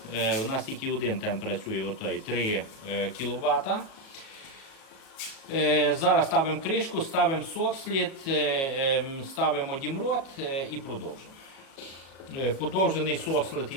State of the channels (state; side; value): late; right; 37 ms